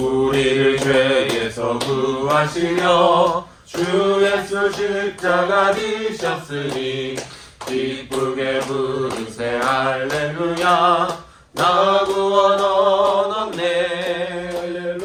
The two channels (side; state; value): both; identical; correlation 1.00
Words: 죄에서 구하시려 주 예수 십자가 지셨으니 기쁘게 부르세 할렐루야. 나 구원 얻었네.